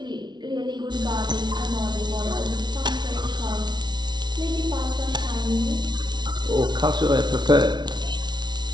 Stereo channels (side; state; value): left; late; 0.21 ms